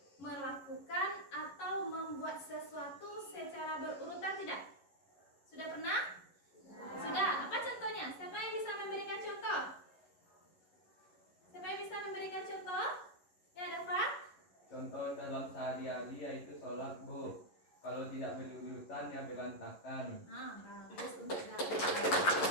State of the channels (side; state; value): right; late; 11 ms